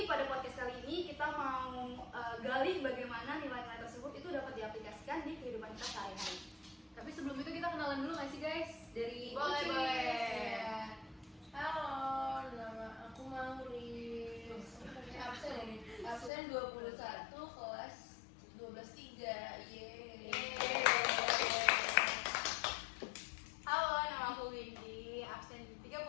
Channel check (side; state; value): right; drops out; at 16.3 s